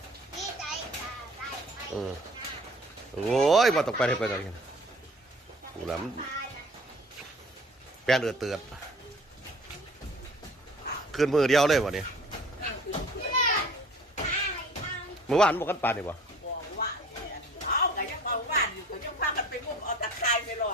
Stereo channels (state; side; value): normal; both; correlation 0.49